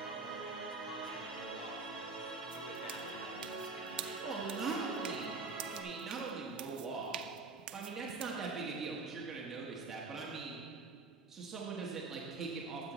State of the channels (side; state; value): left; quieter; 3.9 dB